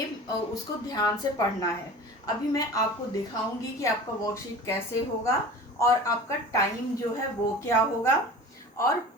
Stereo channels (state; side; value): normal; both; correlation 0.38